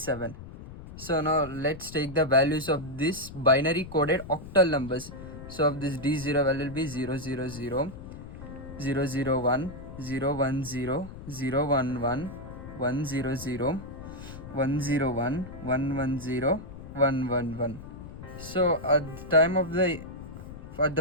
So now let's take the values of this binary coded octal numbers. So of this D0 value will be 000, 001, 010, 011, 100, 101, 110, 111. So at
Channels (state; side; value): noise; left; rumble, 13 dB below the sound